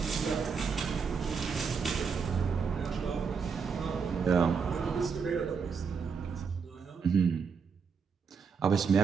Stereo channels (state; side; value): quieter; left; 5.8 dB